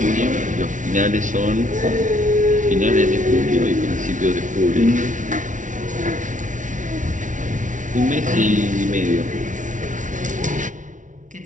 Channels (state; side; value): late; left; 0.37 ms